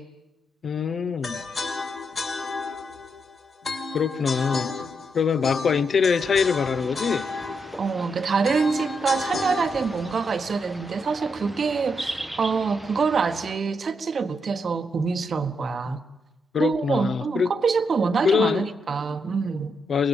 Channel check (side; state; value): both; normal; correlation 0.80